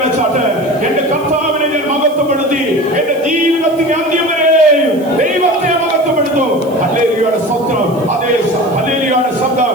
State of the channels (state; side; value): noise; right; hiss, 24 dB below the sound